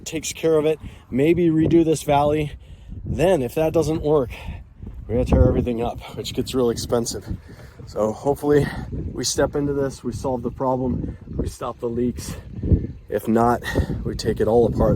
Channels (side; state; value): both; identical; correlation 1.00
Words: takes care of it. Maybe redo this valley. Then if that doesn't work, we're gonna tear everything up, which gets real expensive. So hopefully we step into this, we solve the problem, we stop the leaks. If not, we take it all